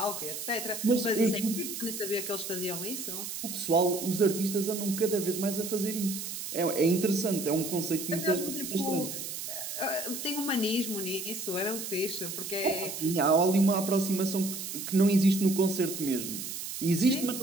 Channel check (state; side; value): noise; right; hiss, 7 dB below the sound